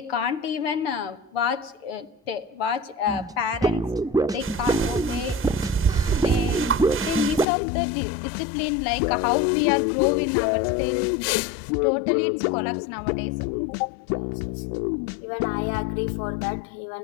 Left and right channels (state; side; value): drops out; right; at 7.5 s